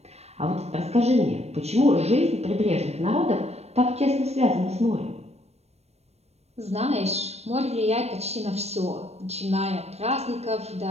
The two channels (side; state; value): left; late; 0.31 ms